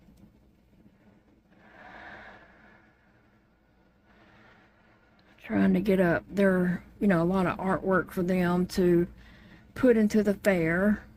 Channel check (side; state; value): both; identical; correlation 1.00